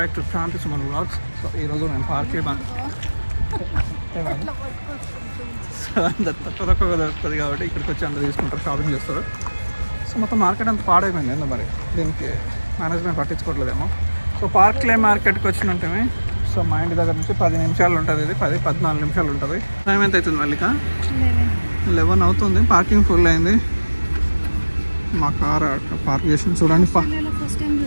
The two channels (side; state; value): both; inverted; correlation -1.00